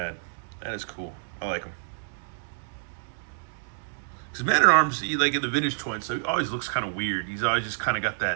That is cool. I like him. Because Man-at-Arms, like in the vintage toys, so he always looks kind of weird. He's always just kind of got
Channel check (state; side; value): silent; left; digital silence